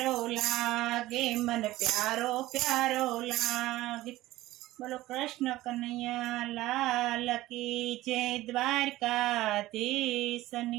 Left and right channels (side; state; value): left; quieter; 16.8 dB